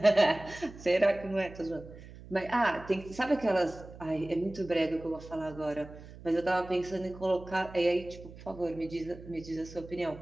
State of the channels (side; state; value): right; noise; hum, 17 dB below the sound